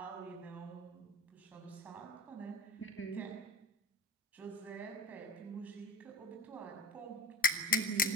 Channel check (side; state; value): both; normal; correlation 0.32